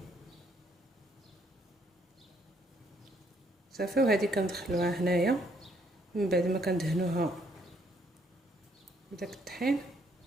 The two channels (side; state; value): both; normal; correlation 0.69